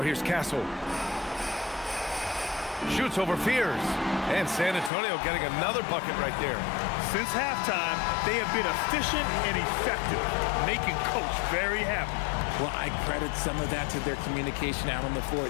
here's Castle. Shoots over Fears. And San Antonio getting another bucket right there. Since halftime, they have been efficient and effective, making Coach very happy. Well, I credit some of that to their communication out on the floor.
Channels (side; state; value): right; drops out; at 4.9 s